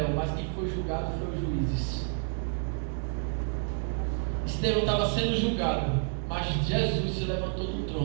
mas quem foi julgado foi os juízes. Estevão estava sendo julgado, mas Jesus se levantou do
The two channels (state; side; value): silent; left; 58 dB below the other